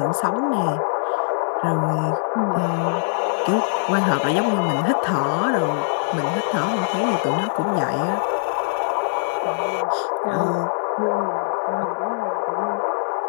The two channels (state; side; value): silent; right; digital silence